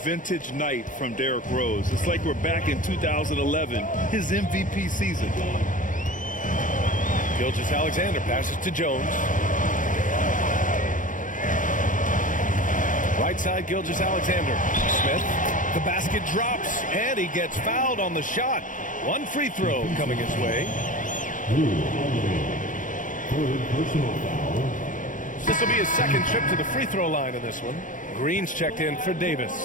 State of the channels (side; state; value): right; late; 0.38 ms